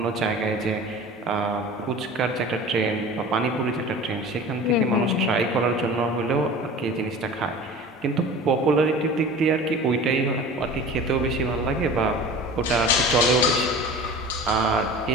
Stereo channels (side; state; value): both; normal; correlation 0.39